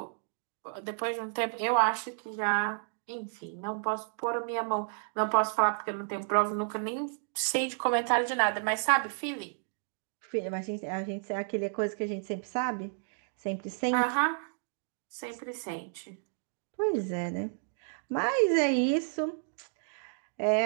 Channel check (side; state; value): left; silent; digital silence